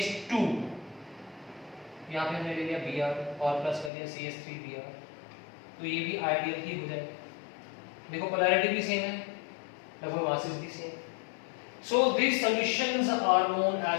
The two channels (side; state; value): right; drops out; at 3.9 s